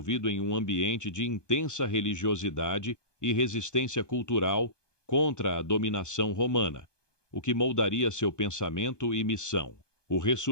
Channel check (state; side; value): late; right; 1.2 ms